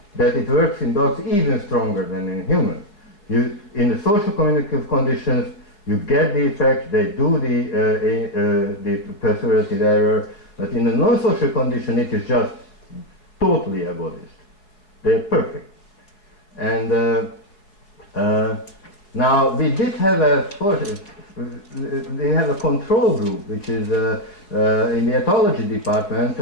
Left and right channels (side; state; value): right; late; 4.8 ms